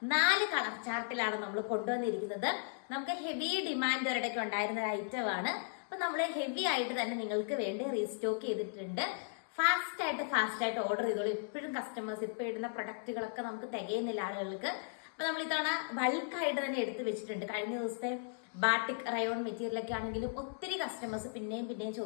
4 കളർ ചാർട്ടിലാണ് നമ്മൾ കൊണ്ടുവന്നിരിക്കുന്നത്. നമുക്ക് ഹെവി ഡിമാൻഡ് ഒരിടയ്ക്ക് ഉണ്ടായിരുന്ന ഒരു ഐറ്റം ആണ്. അപ്പൊ നമ്മൾ ഹെവി ആയിട്ട് തന്നെ നിങ്ങൾക്ക് വേണ്ടി റീസ്റ്റോക്ക് ചെയ്തിട്ടുണ്ട്. ഫാസ്റ്റ് ആയിട്ട് ഓർഡർ ചെയ്തോളൂ. എപ്പോഴും കസ്റ്റമേഴ്സ് ഇപ്പൊ ഇടുന്ന പ്രൊഡക്റ്റുകളൊക്കെ നമുക്ക് തികയുന്നില്ല ആളുകൾക്ക്. അപ്പൊ നമ്മൾ ഇത്തവണ ബൾക്കായിട്ട് തന്നെ എടുത്തു വെച്ചിട്ടുണ്ട്. കഴിഞ്ഞ ദിവസത്തെ ബാട്ടിക് റയോൺ മെറ്റീരിയൽ ഒക്കെ ആണെങ്കിലും ഒത്തിരി കസ്റ്റമേഴ്സ് പിന്നെയും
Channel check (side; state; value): right; silent; digital silence